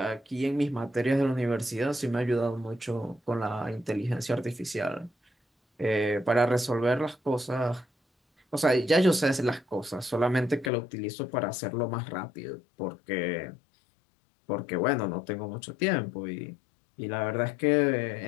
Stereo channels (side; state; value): right; drops out; at 10.7 s